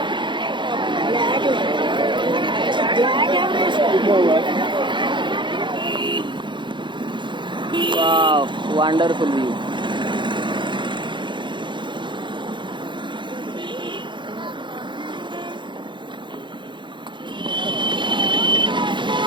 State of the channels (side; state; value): left; late; 0.23 ms